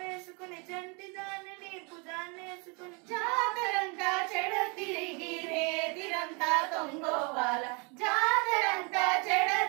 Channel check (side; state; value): left; quieter; 32.4 dB